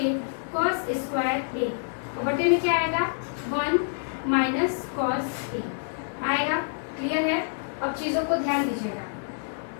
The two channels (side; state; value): right; silent; digital silence